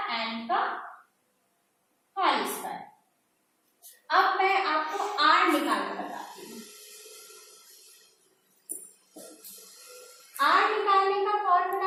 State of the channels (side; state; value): both; identical; correlation 1.00